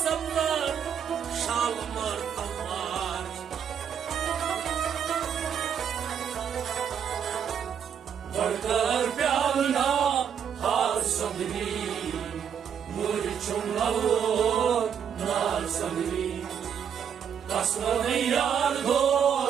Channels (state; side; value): quieter; left; 8.0 dB